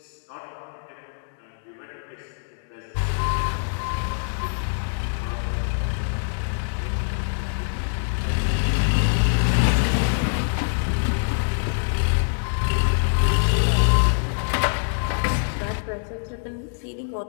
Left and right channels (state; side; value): silent; right; digital silence